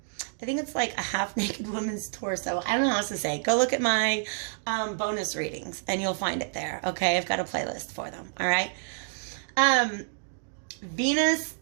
think it's like a half naked woman's torso. I don't know how else to say. Go look at my bonus readings and you'll find it there. Okay, I've got a playlist for them. All right. Venus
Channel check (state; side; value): silent; left; digital silence